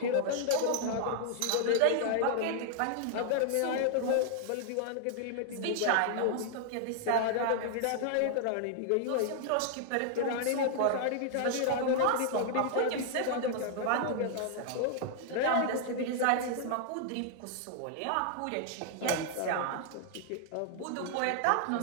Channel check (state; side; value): different; both; correlation -0.01